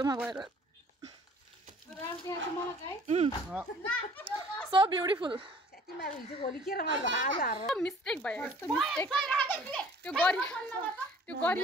गएर सो ब्युटिफुल मिस्टेक भयो यस्तो मिस्टेक त्यो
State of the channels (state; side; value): normal; both; correlation 0.53